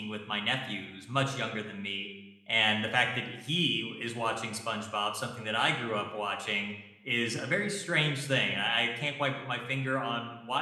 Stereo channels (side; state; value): both; identical; correlation 1.00